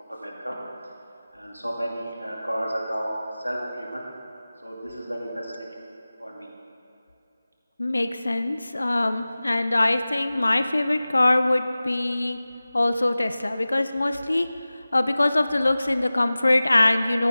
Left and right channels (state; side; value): inverted; both; correlation -0.98